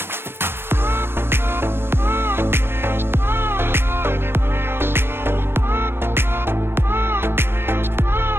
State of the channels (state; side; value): late; left; 0.11 ms